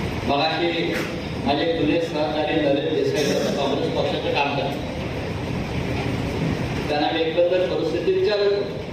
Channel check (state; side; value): identical; both; correlation 1.00